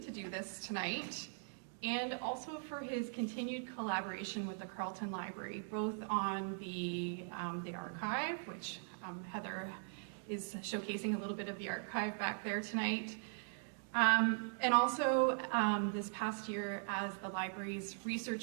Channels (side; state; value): left; silent; digital silence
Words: do this tonight, and also for his continued collaboration with the Carleton Library, both on the archive, which Heather is showcasing a little bit of the archive back there tonight, and also this past year as the library's